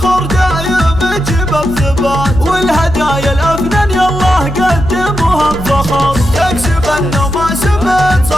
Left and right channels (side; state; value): left; noise; hum, 10 dB below the sound